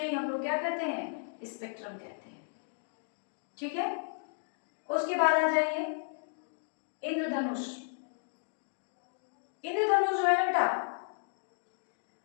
ही हम लोग क्या कहते हैं? स्पेक्ट्रम कहते हैं। ठीक है, उसके बाद आ जाइए इंद्रधनुष। इंद्रधनुष जो है ना बेटा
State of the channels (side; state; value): right; silent; digital silence